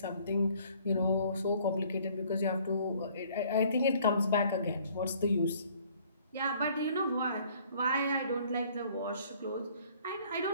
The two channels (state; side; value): inverted; both; correlation -0.58